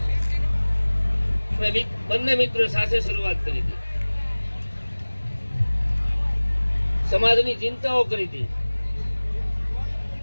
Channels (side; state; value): both; inverted; correlation -1.00